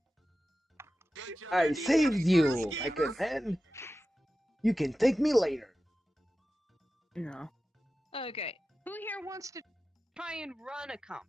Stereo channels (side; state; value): both; normal; correlation 0.94